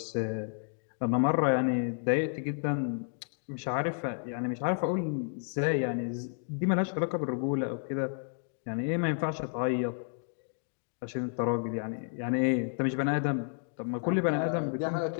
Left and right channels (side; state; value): right; silent; digital silence